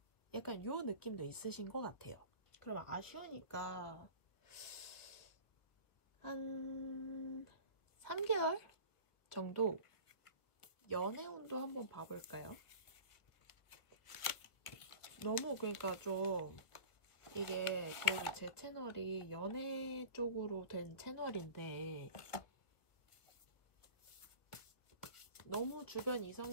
약간 요 느낌도 있으신 것 같아요. 그럼 아쉬우니까 한 3개월 정도 연애운도 한번 봐볼까요? 너무 그러니까 좀 이게 그래도 제 채널이 연애 쪽으로 된 채널인데 너무 주변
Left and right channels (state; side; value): late; right; 1.4 ms